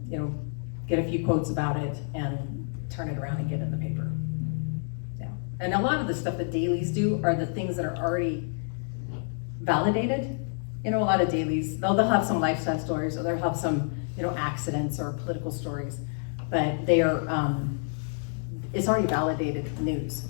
know, get a few quotes about it and turn it around and get it in the paper. Yeah, and a lot of the stuff that dailies do are the things that are already validated. You know, a lot of dailies, they'll have some lifestyle stories, or they'll have some, you know, accidents or political stories, but they are, it's already validated news.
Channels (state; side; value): silent; right; 56 dB below the other